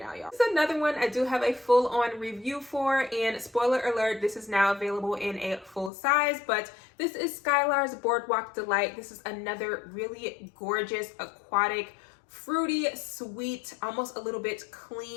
now, y'all. This is another one I do have a full-on review for, and spoiler alert, this is now available in a full size, but this is Skylars Boardwalk Delight. This is another really gorgeous aquatic fruity, sweet, almost a little bit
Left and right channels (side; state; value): right; drops out; at 5.9 s